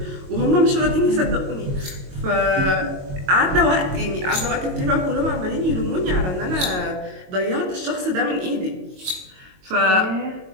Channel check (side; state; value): left; late; 22 ms